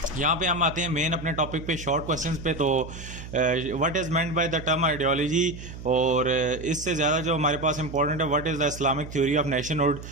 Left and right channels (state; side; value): noise; right; hum, 12 dB below the sound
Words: यहाँ पे हम आते हैं मेन अपने टॉपिक पे शॉर्ट क्वेश्चंस पे। तो what is meant by the term ideology, और इससे ज़्यादा जो हमारे पास इंपॉर्टेंट है what is the Islamic theory of nationhood.